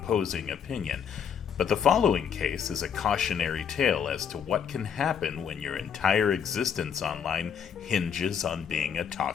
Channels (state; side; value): quieter; right; 7.8 dB